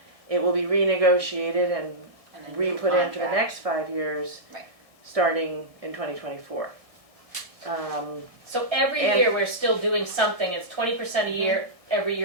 It will be renegotiated and And a new re-put in for the contract. next 5 years, Right. starting in 2024. So every And- year we're still doing something. It's 20% a year every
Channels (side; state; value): left; late; 1.7 ms